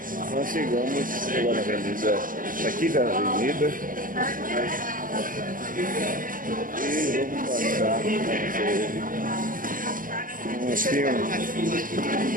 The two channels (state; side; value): late; left; 0.40 ms